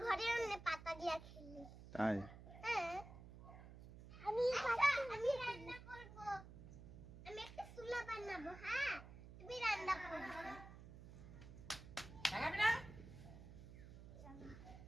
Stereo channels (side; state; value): right; noise; hum, 14 dB below the sound